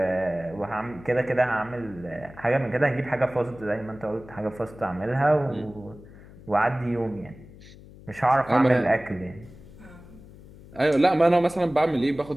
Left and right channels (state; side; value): noise; left; hum, 20 dB below the sound